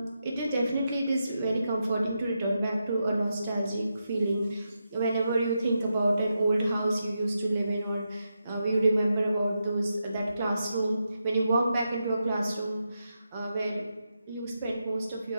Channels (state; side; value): inverted; both; correlation -0.86